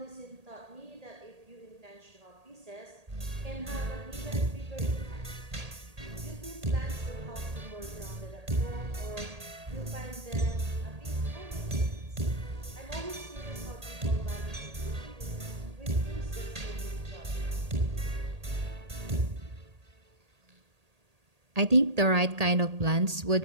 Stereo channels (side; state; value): left; late; 1.8 ms